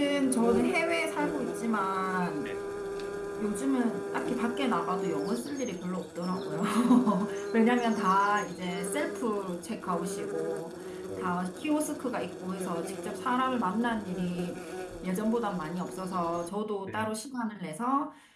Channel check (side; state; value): both; identical; correlation 1.00